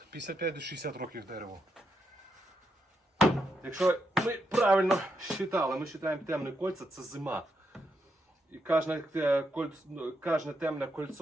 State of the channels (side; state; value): both; normal; correlation 0.81